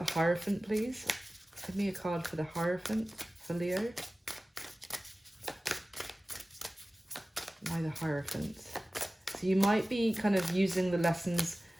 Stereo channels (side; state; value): both; normal; correlation 0.97